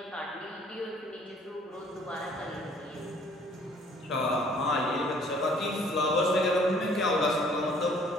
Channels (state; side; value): normal; both; correlation 0.57